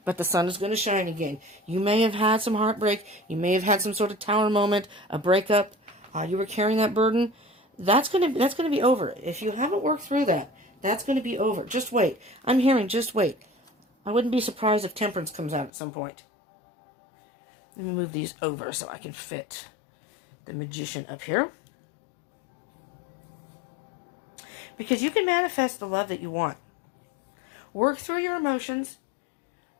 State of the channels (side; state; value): right; drops out; at 15.7 s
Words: but the sun is going to shine again. You may have had some heartbreak. You may have had some sort of tower moment, a breakup. You were carrying that burden. That's going to be over. If you haven't worked through that, that's going to be over. Just wait. I'm hearing just wait. I wouldn't be surprised if Temperance comes out at some point. Let me move these over so I can fit the Magician up here. Because you can manifest the love that you want. Work through your emotions.